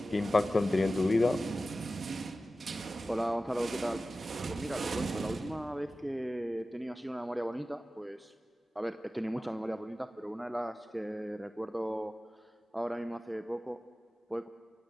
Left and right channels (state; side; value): normal; both; correlation 0.95